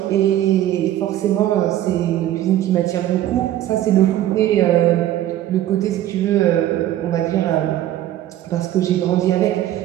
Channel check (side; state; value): left; quieter; 13.0 dB